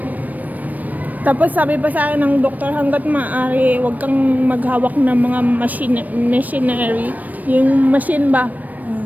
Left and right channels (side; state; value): left; late; 0.080 ms